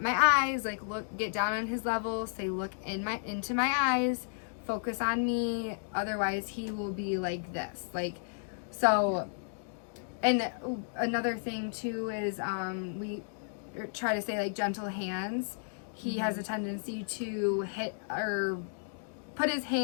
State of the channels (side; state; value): right; silent; digital silence